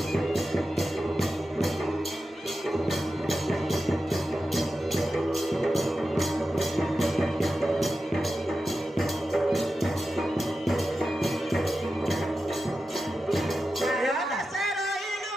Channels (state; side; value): normal; both; correlation 0.92